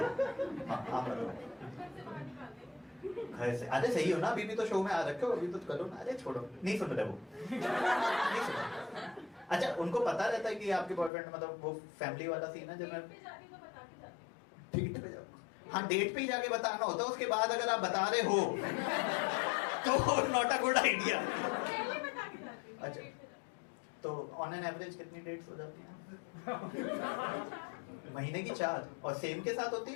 घर से अरे सही हो ना, अभी भी तो शो में आ रखे हो, अभी तो करो ना। अरे छोड़ो, नहीं सुन रहे वो, नहीं सुन रहे। अच्छा उनको पता रहता है कि आपके बॉयफ्रेंड मतलब वो फैमिली वाला सीन है जब मैं डेट पे जाऊँ? हाँ डेट पे ही जाके बताना होता है, उसके बाद अगर आप बता रहे हो तो नॉट अ गुड आइडिया। अच्छा तो ऑन एन एवरेज कितनी डेट्स हो जाती हैं? महीने की 4 और सेम के साथ होती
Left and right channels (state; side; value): drops out; right; at 11.1 s